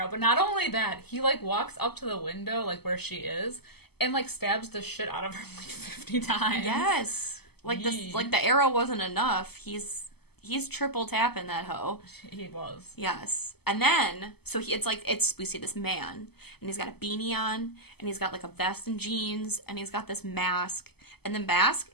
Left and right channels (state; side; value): late; right; 0.97 ms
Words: but not only that, he, like, walks up to the window, like, where she is, and, like, stabs the shit out of her, like, 50 times. Yes. Like, the arrow wasn't enough. He's he's triple tapping that hoe. He was. Yes. And then, so we see this man, and he's got a beanie on, and he's got like a vest and jeans, and he's got this mask, and the mask